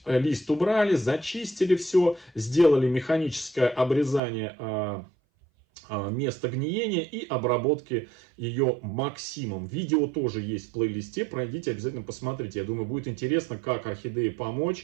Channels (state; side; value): drops out; left; at 4.2 s